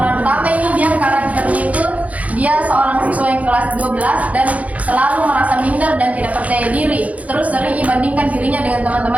utama ini dia karakternya itu dia seorang siswa yang kelas 12 dan selalu merasa minder dan tidak percaya diri. Terus sering dibandingkan dirinya dengan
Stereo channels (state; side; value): late; left; 0.069 ms